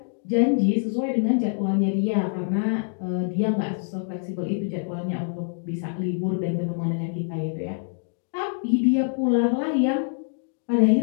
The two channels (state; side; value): silent; right; 62 dB below the other